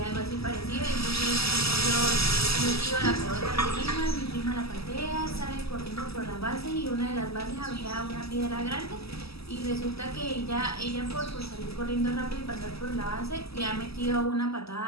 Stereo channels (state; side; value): late; right; 0.77 ms